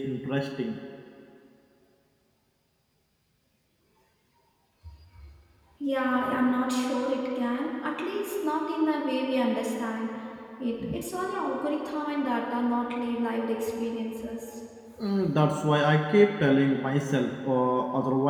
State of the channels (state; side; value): identical; both; correlation 1.00